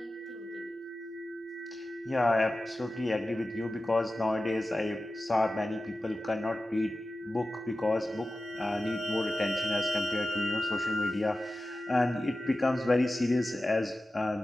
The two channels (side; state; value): both; normal; correlation 0.94